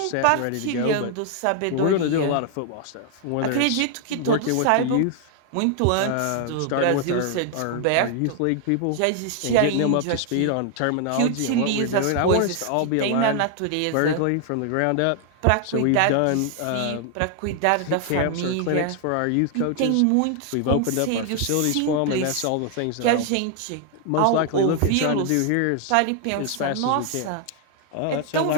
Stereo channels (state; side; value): different; both; correlation 0.00